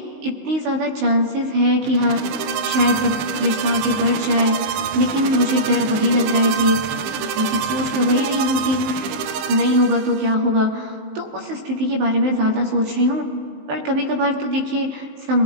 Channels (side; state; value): left; late; 20 ms